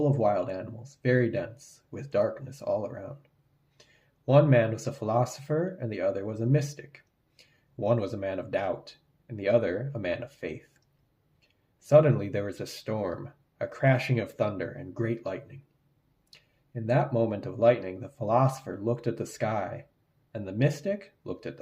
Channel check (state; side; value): identical; both; correlation 1.00